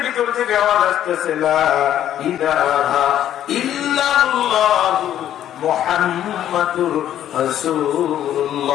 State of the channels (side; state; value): right; quieter; 11.2 dB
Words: ভিতর থেকে আওয়াজ আসতেছে, লা ইলাহা ইল্লাল্লাহু মুহাম্মাদুর